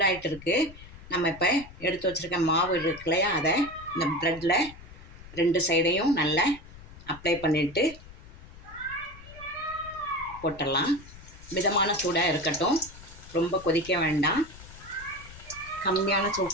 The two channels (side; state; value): left; noise; rumble, 18 dB below the sound